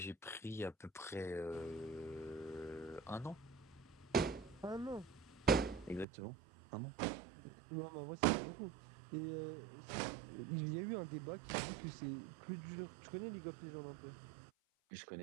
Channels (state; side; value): drops out; left; at 6.1 s